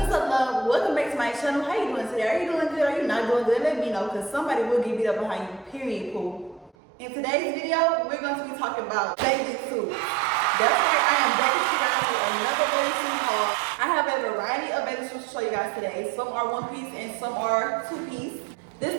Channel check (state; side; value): drops out; left; at 6.7 s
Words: up, love? Welcome back to my channel. How you doing today? Are you doing good? Are you not doing good? Let me know, because somebody will get beat up behind you, period, poo. In today's video, we're going to be talking about bathing suits. That's right, I am back with you guys with another bathing suit haul. I have a variety of bathing suits to show you guys today. Some are one piece and some are two piece.